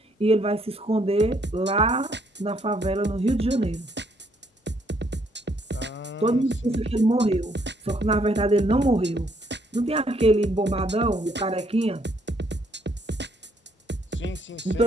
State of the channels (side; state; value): both; normal; correlation 0.69